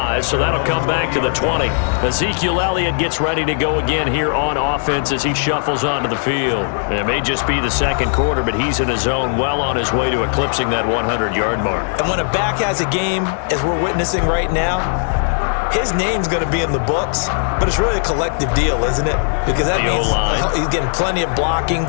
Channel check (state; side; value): silent; right; digital silence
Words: so that'll come back to the 20. Ezekiel Elliott gets ready to go again here on offense as he shuffles onto the field. It may just be the second quarter, but he's in his zone, well on his way to eclipsing that 100-yard mark. And when a back has a game, as we're witnessing right now, his name's going to be in the books, but it's really a collective deal, isn't it? Because that means he's getting plenty of blocking,